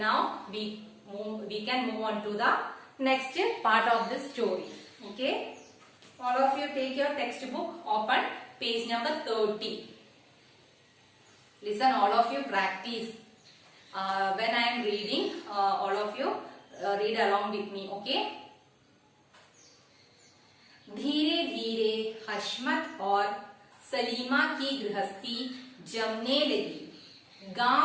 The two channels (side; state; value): both; identical; correlation 1.00